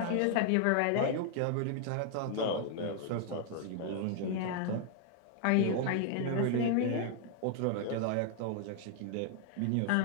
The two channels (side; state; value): both; different; correlation 0.00